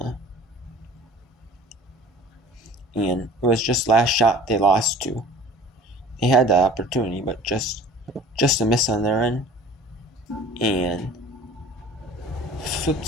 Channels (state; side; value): normal; both; correlation 0.45